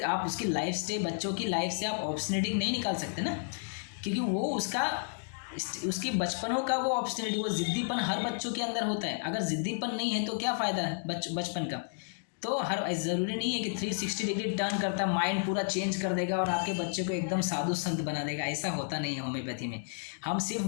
लाइफ से, बच्चों की लाइफ से आप ऑब्स्टिनिटी नहीं निकाल सकते ना, क्योंकि वो उसकी बचपनों का वो ऑब्स्टिनिटी, वो ज़िद्दीपन हर बच्चों के अंदर होता है। अगर ज़िद्दीपन नहीं है तो क्या फ़ायदा है बचपन का। तो ज़रूरी नहीं है कि 360 डिग्री टर्न करता माइंड पूरा चेंज कर देगा और आपके बच्चे को एकदम साधु संत बना देगा, ऐसा होता नहीं है होम्योपैथी में। हम सिर्फ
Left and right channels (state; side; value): silent; right; digital silence